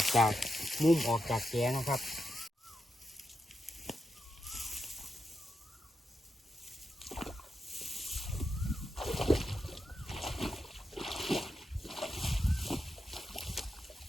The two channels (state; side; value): normal; both; correlation 0.86